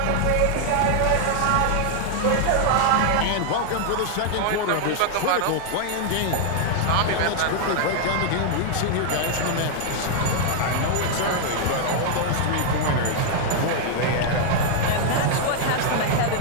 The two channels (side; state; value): both; different; correlation 0.00